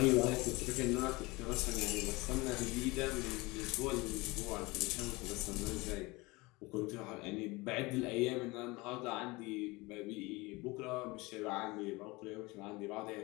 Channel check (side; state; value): right; quieter; 23.4 dB